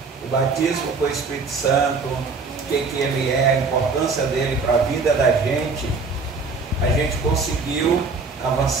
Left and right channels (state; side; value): quieter; left; 4.3 dB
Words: o batismo com o Espírito Santo, o que ele é, a importância dele para a vida da gente, a gente conseguiu